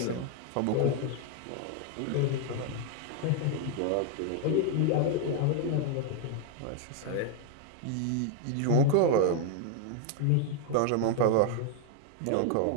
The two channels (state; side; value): different; both; correlation 0.01